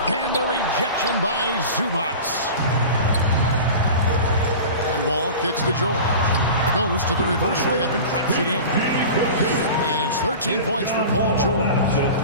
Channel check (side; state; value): both; inverted; correlation -0.35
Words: And the rejection by Zubats. And Wall kicks to George. Goes to the reverse layup and traps it in. And it's 13 points for Paul George.